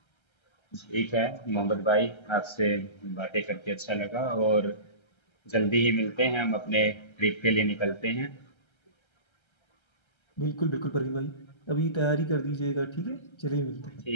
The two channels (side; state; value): right; late; 1.3 ms